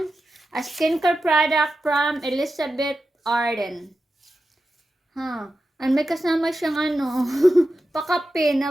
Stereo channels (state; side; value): normal; both; correlation 0.91